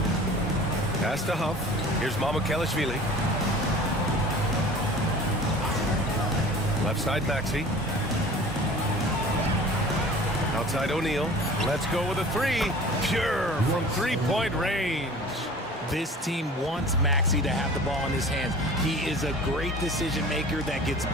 Pass to Huff. Here's Mamukelashvili. Left side Maxey. Outside O'Neal. Let's go with a 3. Pure from 3-point range. This team wants Maxey to have the ball in his hands. He is a great decision maker that gets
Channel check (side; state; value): both; normal; correlation 0.43